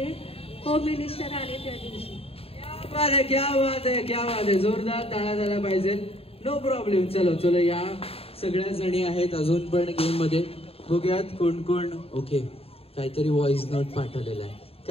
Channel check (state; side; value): late; right; 0.28 ms